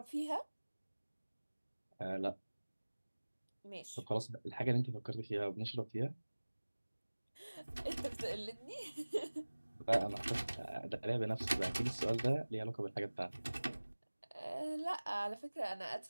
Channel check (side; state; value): both; inverted; correlation -1.00